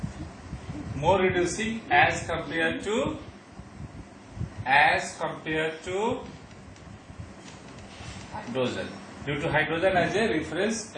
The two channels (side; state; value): both; identical; correlation 1.00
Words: More reducing as compared to hydrogen, due to hydrogen as a reference